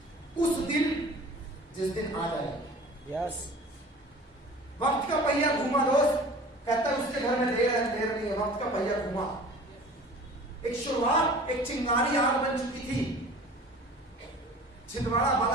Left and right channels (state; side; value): normal; both; correlation 0.43